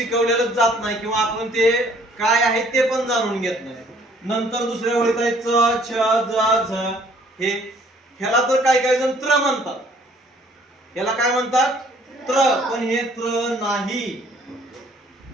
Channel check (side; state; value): both; normal; correlation 0.59